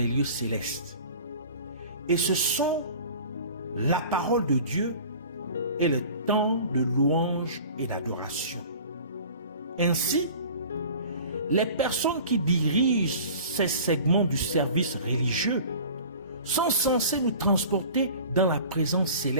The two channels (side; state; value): both; inverted; correlation -0.42